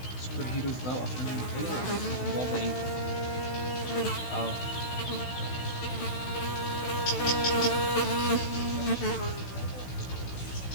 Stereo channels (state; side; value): late; right; 16 ms